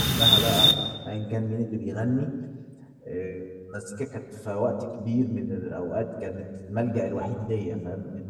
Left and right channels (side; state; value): both; identical; correlation 1.00